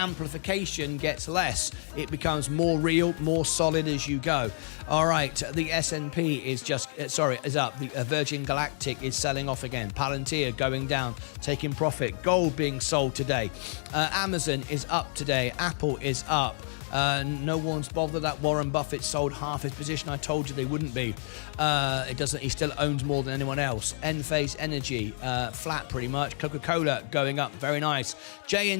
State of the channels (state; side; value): silent; right; 59 dB below the other